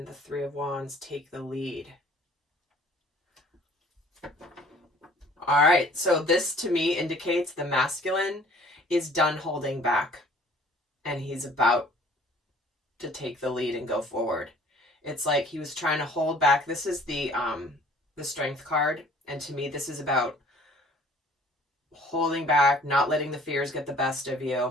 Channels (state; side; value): normal; both; correlation 0.54